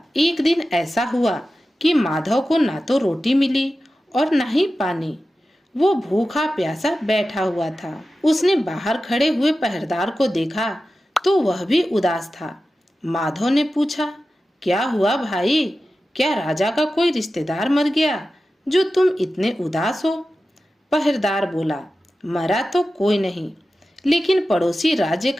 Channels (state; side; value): normal; both; correlation 0.94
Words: एक दिन ऐसा हुआ कि माधव को ना तो रोटी मिली और ना ही पानी। वो भूखा प्यासा बैठा हुआ था। उसने बाहर खड़े हुए पहरेदार को देखा तो वह भी उदास था। माधव ने पूछा, क्या हुआ भाई? क्या राजा का कोई रिश्तेदार मर गया जो तुम इतने उदास हो? पहरेदार बोला, मरा तो कोई नहीं, लेकिन पड़ोसी राज्य